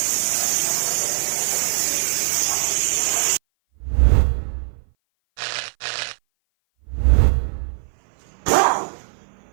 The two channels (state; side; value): silent; left; 58 dB below the other